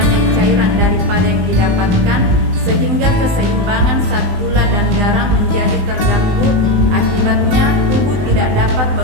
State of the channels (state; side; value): late; left; 20 ms